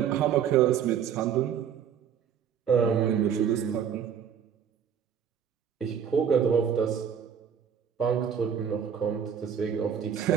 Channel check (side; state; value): left; quieter; 8.1 dB